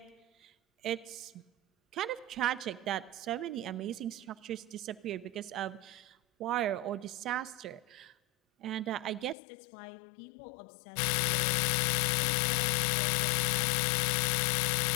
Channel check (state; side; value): drops out; right; at 9.3 s